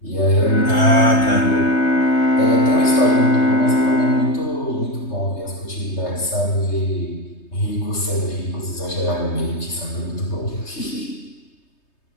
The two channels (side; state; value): right; late; 3.2 ms